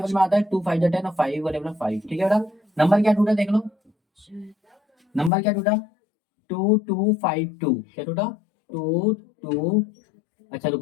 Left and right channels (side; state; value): right; drops out; at 5.3 s